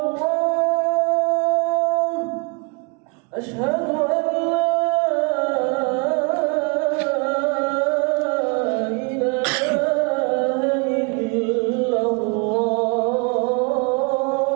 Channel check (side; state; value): left; quieter; 32.7 dB